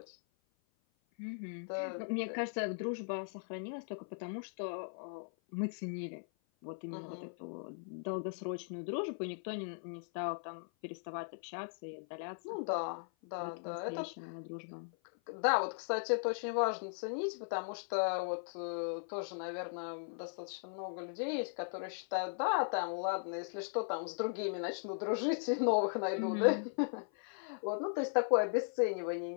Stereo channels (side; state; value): right; silent; 52 dB below the other